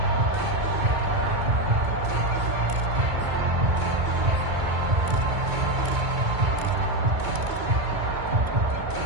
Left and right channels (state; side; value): late; left; 2.2 ms